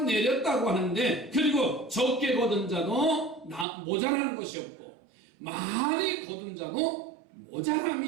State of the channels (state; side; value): drops out; left; at 3.7 s